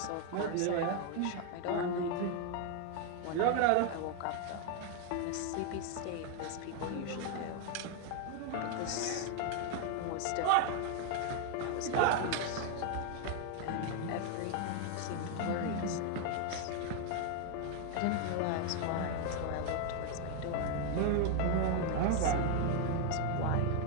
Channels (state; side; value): different; both; correlation 0.01